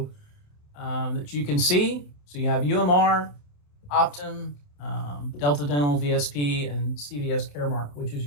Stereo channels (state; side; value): late; right; 28 ms